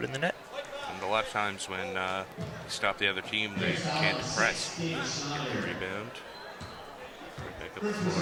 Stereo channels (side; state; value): both; identical; correlation 1.00